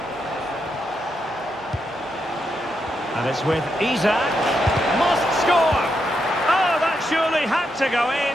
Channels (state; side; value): normal; both; correlation 0.82